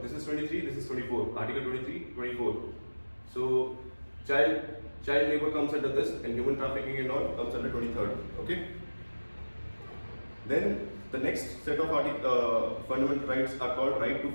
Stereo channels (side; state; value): both; inverted; correlation -1.00